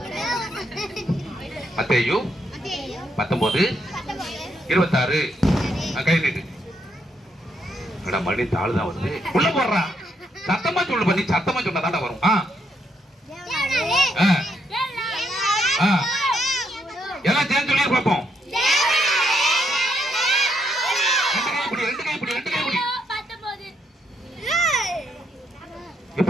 மத்தேயு 19:26. கை நீட்டு. மணி தாள் தான் வருது, உள்ள போடுறா. சத்தமா சொல்லு பண்ணி, சத்தமா சொன்னா தாண்டா வரும். எல்லாம் சேர்ந்து சொல்லி பார்ப்போம். ரெண்டு கை பிடி.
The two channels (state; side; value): normal; both; correlation 0.76